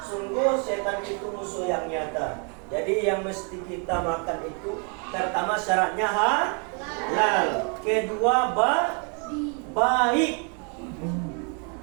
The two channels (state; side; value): quieter; left; 38.1 dB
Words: Sungguh setan itu musuh yang nyata. Jadi yang mesti kita makan itu pertama syaratnya halal. Kedua baik.